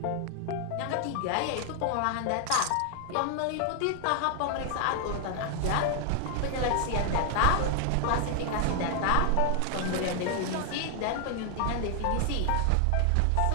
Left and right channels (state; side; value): different; both; correlation 0.00